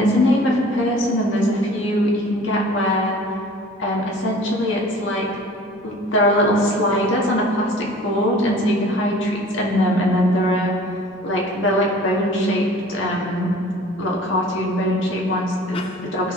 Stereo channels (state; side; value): normal; both; correlation 0.47